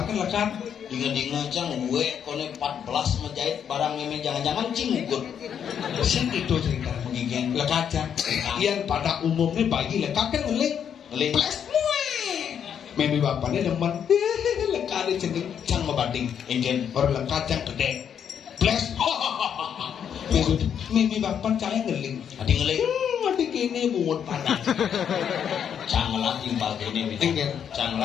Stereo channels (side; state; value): right; quieter; 8.3 dB